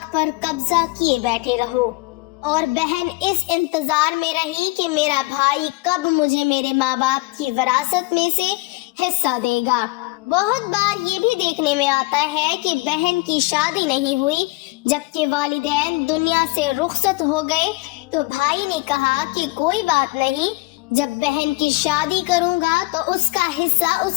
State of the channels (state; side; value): quieter; right; 22.9 dB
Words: پر قبضہ کیے بیٹھے رہو، اور بہن اس انتظار میں رہی کہ میرا بھائی کب مجھے میرے ماں باپ کی وراثت میں سے حصہ دے گا۔ بہت بار یہ بھی دیکھنے میں آتا ہے کہ بہن کی شادی نہیں ہوئی، جبکہ والدین دنیا سے رخصت ہو گئے تو بھائی نے کہا کہ کوئی بات نہیں، جب بہن کی شادی کروں گا تو اس کا حصہ